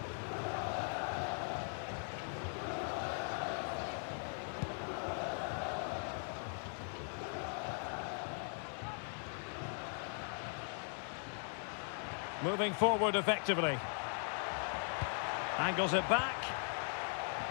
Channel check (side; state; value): right; silent; 51 dB below the other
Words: Moving forward effectively. Angles it back.